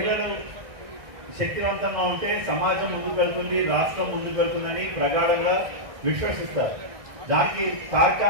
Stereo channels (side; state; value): left; late; 1.6 ms